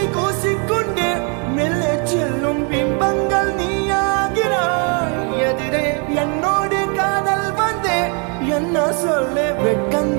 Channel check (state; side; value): quieter; left; 37.3 dB